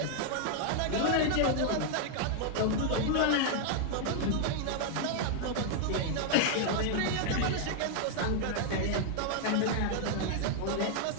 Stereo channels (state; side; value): different; both; correlation 0.00